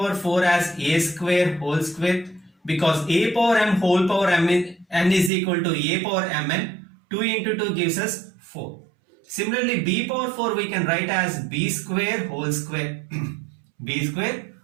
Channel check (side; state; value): left; drops out; at 5.3 s